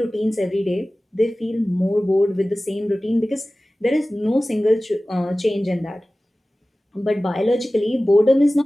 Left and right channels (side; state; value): both; normal; correlation 0.97